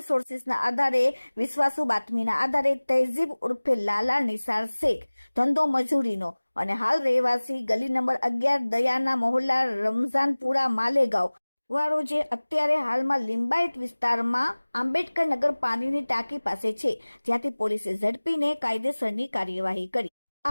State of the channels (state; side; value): inverted; both; correlation -1.00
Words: સોર્સિસના આધારે વિશ્વાસુ બાતમીના આધારે તહેઝીબ ઉર્ફે લાલા નિસાર શેખ ધંધો મજૂરીનો અને હાલ રહેવાસી ગલી નંબર 11 દયાના મોહલ્લા રમઝાનપુરા માલેગાંવ વાળો જે અત્યારે હાલમાં લિંબાયત વિસ્તારમાં આંબેડકર નગર પાણીની ટાંકી પાસે છે, જ્યાંથી પોલીસે ઝડપીને કાયદેસરની કાર્યવાહી કરી.